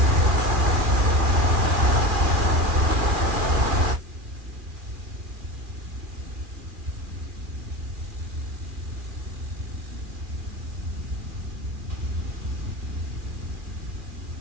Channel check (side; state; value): left; late; 2.4 ms